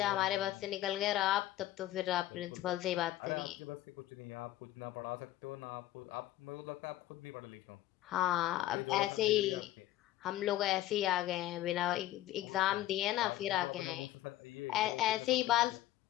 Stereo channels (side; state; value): right; quieter; 14.7 dB